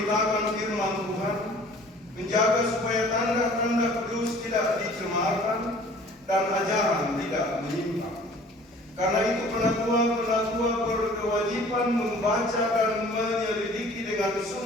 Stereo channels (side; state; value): both; normal; correlation 0.50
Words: firman Tuhan, menjaga supaya tanda-tanda kudus tidak dicemarkan dan ajaran tidak menyimpang. Karena itu penatua berkewajiban membaca dan menyelidiki dengan